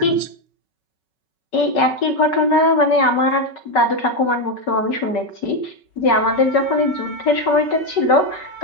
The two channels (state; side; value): late; right; 5.4 ms